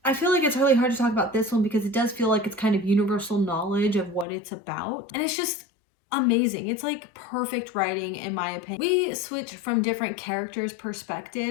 I feel like it's really hard to talk about this one because it does feel like it's kind of universal knowledge of what it's about. And it's just amazing. It's like perfect writing in my opinion. We switch from different characters'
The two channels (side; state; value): right; drops out; at 4.2 s